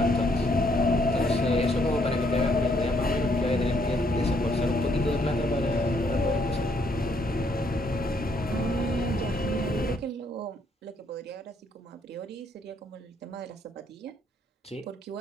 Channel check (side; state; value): both; normal; correlation 0.70